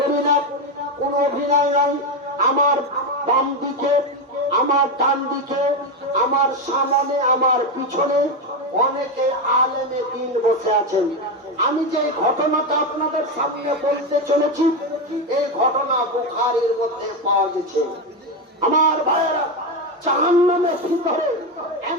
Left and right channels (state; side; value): normal; both; correlation 0.11